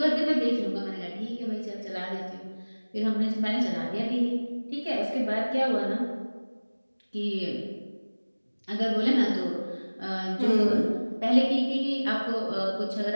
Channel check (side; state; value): both; inverted; correlation -1.00